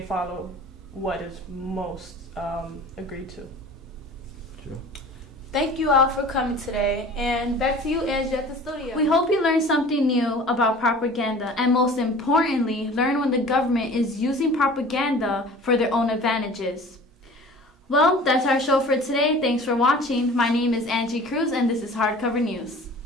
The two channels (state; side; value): normal; both; correlation 0.44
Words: follow what is most agreed to. true. Thank you all for coming today. And back to you, Angie, at the studio. We hope you learned something new about propaganda, and most importantly, learn when the government is using propaganda for their own advantages. Well, that's our show for today. Thanks for watching. My name is Angie Cruz, and this is Hardcover News.